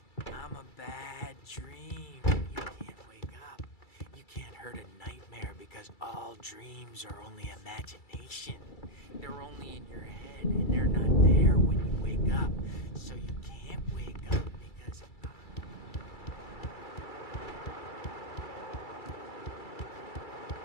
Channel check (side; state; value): right; late; 2.3 ms